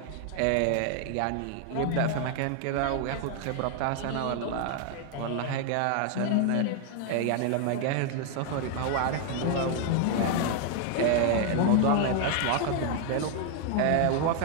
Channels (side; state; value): both; different; correlation 0.00